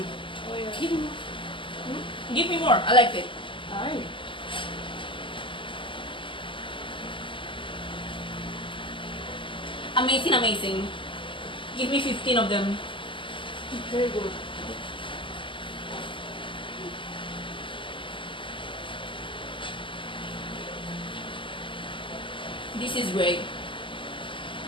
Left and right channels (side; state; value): right; late; 0.25 ms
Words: Oh, yeah. Give me more. I liked it. Alright. Amazing, amazing. Give me 15 of them. Very good. This is great.